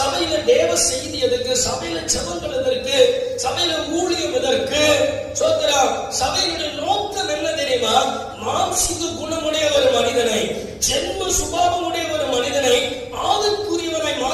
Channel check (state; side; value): identical; both; correlation 1.00